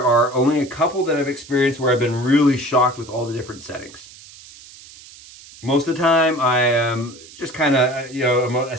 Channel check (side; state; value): right; noise; hiss, 20 dB below the sound